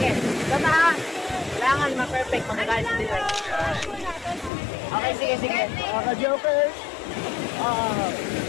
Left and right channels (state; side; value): drops out; right; at 4.5 s